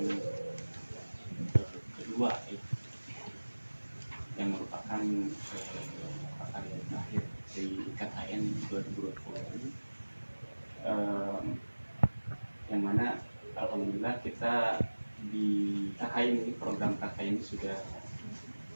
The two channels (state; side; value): inverted; both; correlation -1.00